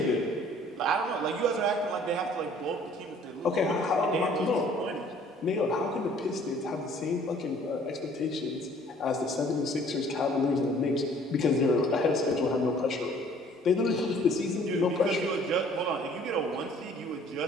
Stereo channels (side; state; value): both; normal; correlation 0.55